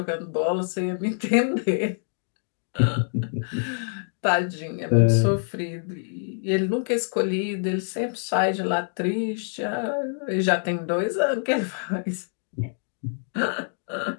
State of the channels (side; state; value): right; silent; 61 dB below the other